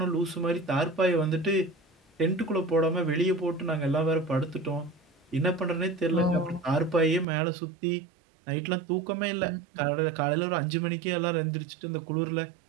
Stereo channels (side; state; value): left; drops out; at 7.2 s